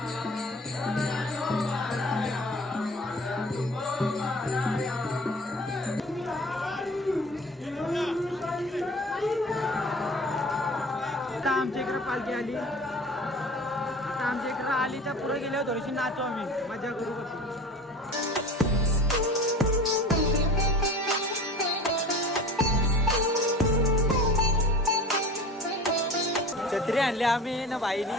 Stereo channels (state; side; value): normal; both; correlation 0.40